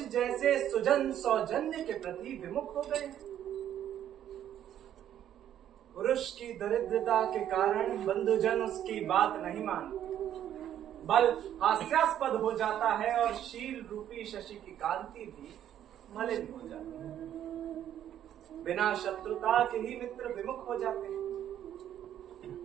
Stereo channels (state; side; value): quieter; left; 10.8 dB